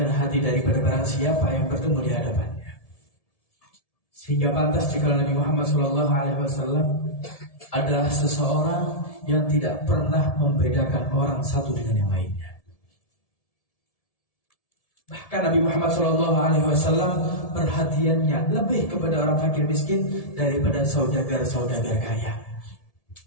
hati daripada barang siapa yang bertemu di hadapannya. Sehingga pantas jika Nabi Muhammad SAW adalah seseorang yang tidak pernah membedakan orang satu dengan yang lainnya. Bahkan Nabi Muhammad SAW perhatiannya lebih kepada orang fakir miskin daripada saudagar-saudagar kaya.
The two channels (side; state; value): right; late; 1.7 ms